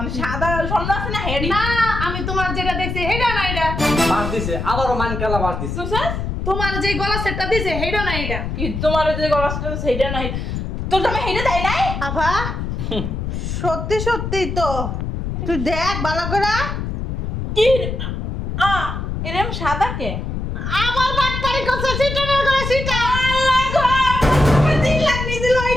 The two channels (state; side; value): noise; left; rumble, 4 dB below the sound